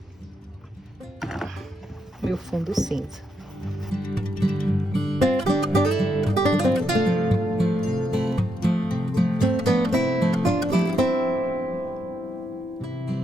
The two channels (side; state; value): both; normal; correlation 0.80